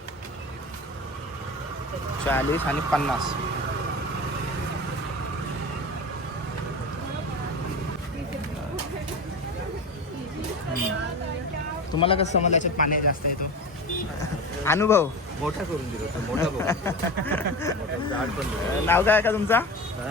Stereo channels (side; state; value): both; normal; correlation 0.28